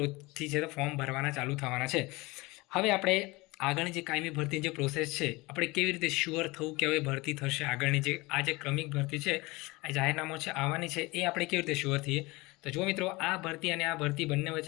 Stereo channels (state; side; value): quieter; right; 23.0 dB